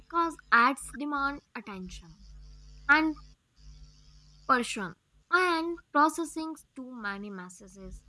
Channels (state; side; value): identical; both; correlation 1.00